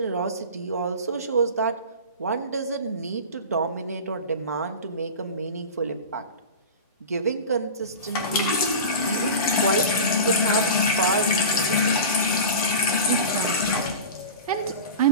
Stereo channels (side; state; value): both; inverted; correlation -0.31